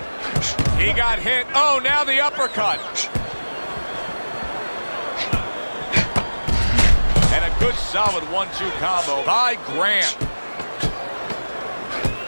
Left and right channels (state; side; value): inverted; both; correlation -1.00